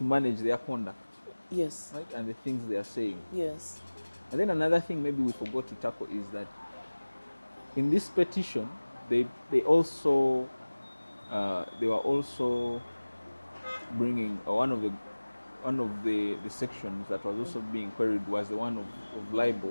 their conduct. Yes. Right, and the things they are saying. Yes. And then another thing maybe we forgot to tackle is that in this petition, they also they were also bringing one of the sections that was also being queried was the one of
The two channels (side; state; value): both; inverted; correlation -1.00